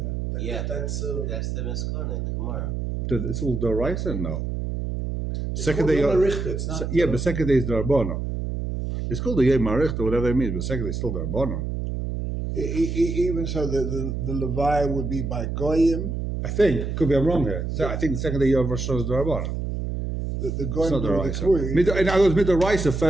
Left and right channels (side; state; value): right; noise; hum, 3 dB below the sound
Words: Yeah, That's that's the Miskon in the Gemara. It's all Doraisa? No. it's Second called day, Yom HaRichter, it's not, yeah, but second day is Dorabana. It's called the Yom HaRichter, whatever it means, but second day is still Dorabana. Even so, the Levi would be by Goyim. I think, could be I'm wrong here. So I think the second day you have Rosh Hashanah is Dorabana. The It's Goyim not do the Doraisa. Kuri. In other words, Midoraisa,